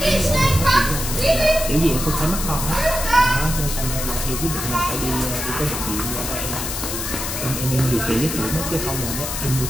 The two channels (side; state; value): left; noise; hiss, 4 dB below the sound